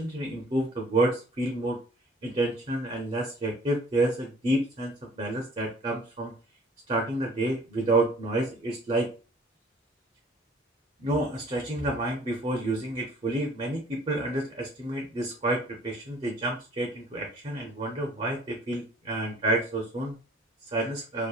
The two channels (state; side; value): normal; both; correlation 0.53